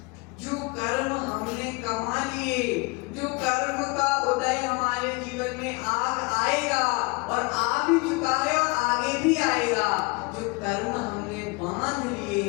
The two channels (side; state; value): right; quieter; 27.6 dB